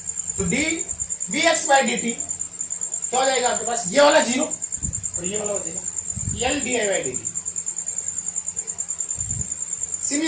तो D V X by D T क्या हो जाएगा आपके पास, ये वाला 0 और ये वाला बचेगा L D I by D T.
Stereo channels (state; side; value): identical; both; correlation 1.00